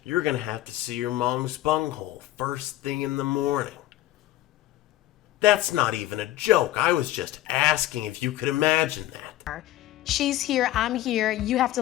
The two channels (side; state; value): right; quieter; 14.9 dB